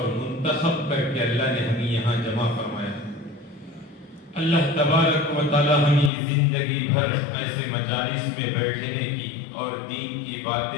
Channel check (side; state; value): right; drops out; at 6.1 s